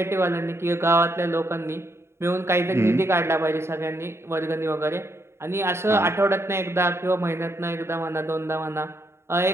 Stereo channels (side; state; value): left; late; 0.13 ms